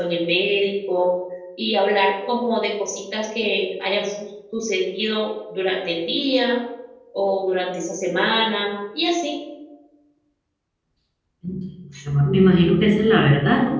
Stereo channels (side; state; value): both; identical; correlation 1.00